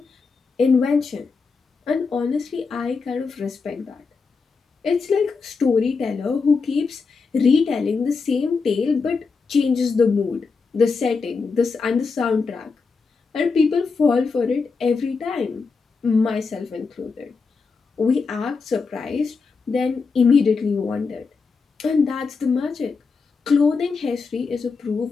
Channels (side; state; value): right; quieter; 4.8 dB